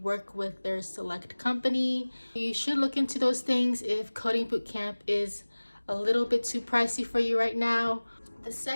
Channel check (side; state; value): both; inverted; correlation -1.00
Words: with their select company. You should look into those things if coding bootcamp is a little bit too pricey for you right now. The